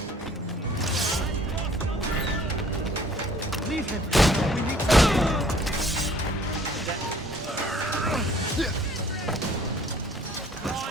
Leave him. We need to...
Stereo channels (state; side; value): normal; both; correlation 0.55